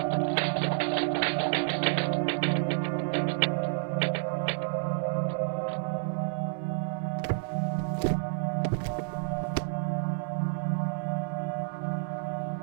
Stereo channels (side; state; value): left; silent; 58 dB below the other